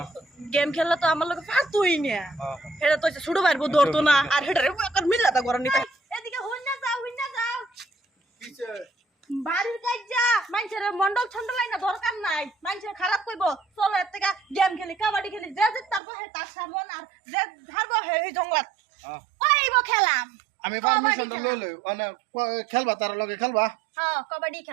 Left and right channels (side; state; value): left; drops out; at 16.0 s